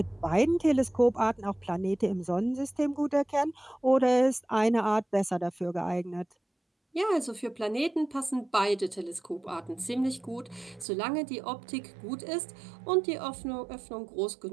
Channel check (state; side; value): drops out; left; at 10.9 s